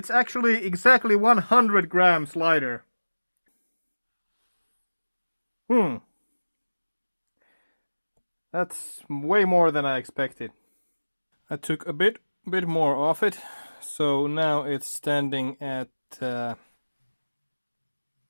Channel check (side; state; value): both; inverted; correlation -1.00